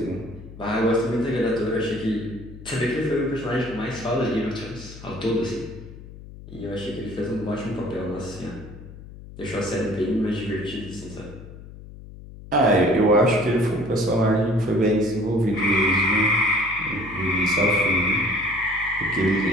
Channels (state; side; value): noise; left; hum, 16 dB below the sound